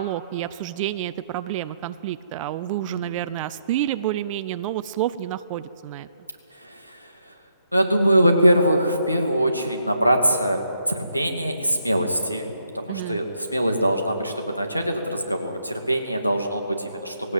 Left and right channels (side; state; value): both; inverted; correlation -0.76